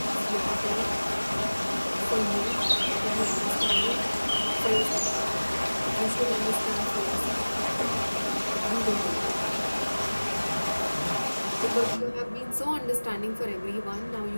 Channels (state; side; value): inverted; both; correlation -1.00